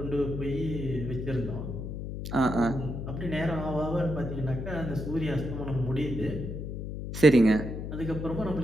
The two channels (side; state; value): left; noise; hum, 6 dB below the sound